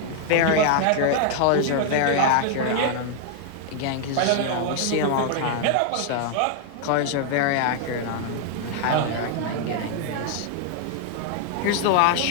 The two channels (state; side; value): different; both; correlation 0.00